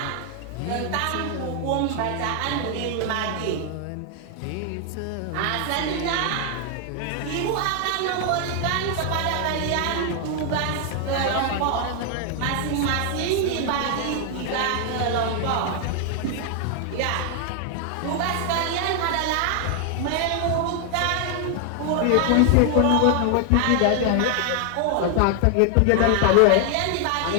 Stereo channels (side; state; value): both; different; correlation 0.00